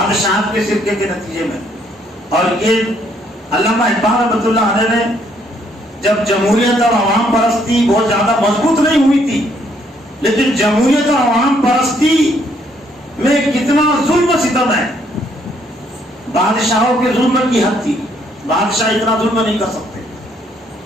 کے شرکے کے نتیجے میں. اور یہ علامہ اقبال رحمۃ اللہ علیہ نے جب جمہوریت اور عوام پرستی بہت زیادہ مضبوط نہیں ہوئی تھی، لیکن جمہوریت اور عوام پرستی میں کتنا ظلم و ستم ہے. بادشاہوں کے ظلم کی حد تھی، بادشاہ اتنا ظلم نہیں کر سکتے،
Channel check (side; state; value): both; normal; correlation 0.69